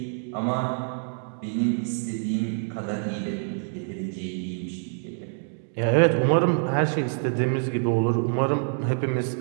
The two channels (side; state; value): left; silent; 61 dB below the other